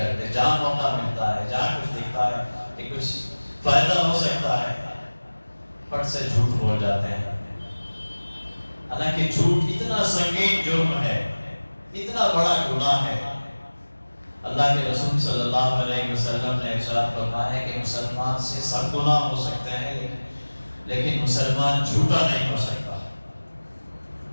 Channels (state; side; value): inverted; both; correlation -1.00